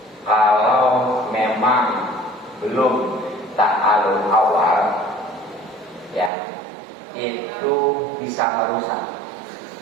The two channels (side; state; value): left; drops out; at 6.3 s